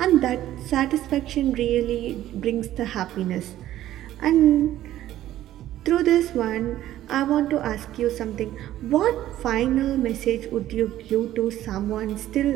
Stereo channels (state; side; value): quieter; left; 13.4 dB